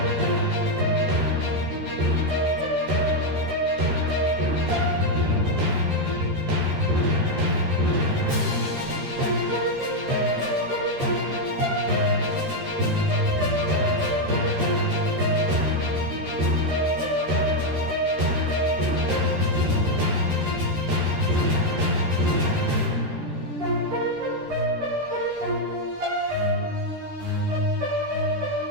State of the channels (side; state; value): left; late; 13 ms